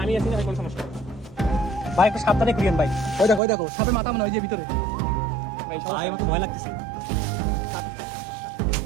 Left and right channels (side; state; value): left; drops out; at 3.4 s